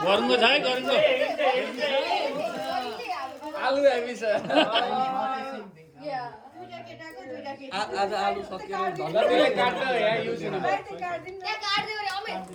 है गरुङ्गो आलु हेभी छ आज आलु सकियो धन्यवाद काट्छ यहाँ युज हुनु त्यहाँ काट्दियो रे अमे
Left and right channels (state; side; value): identical; both; correlation 1.00